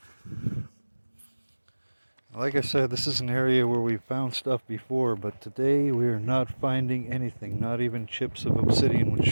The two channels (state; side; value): inverted; both; correlation -1.00